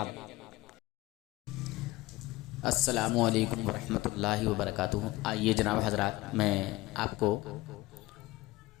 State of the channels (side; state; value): right; quieter; 19.4 dB